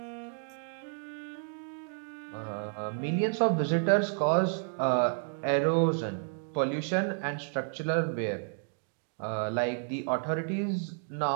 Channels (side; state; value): left; silent; digital silence